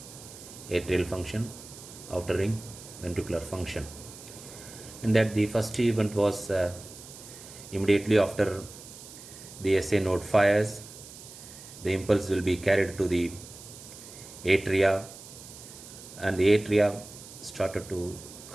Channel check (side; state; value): right; noise; hiss, 16 dB below the sound